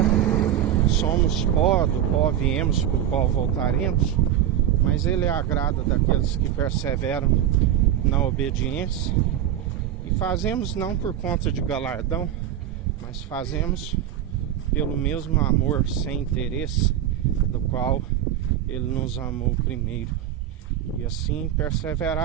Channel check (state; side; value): quieter; left; 11.0 dB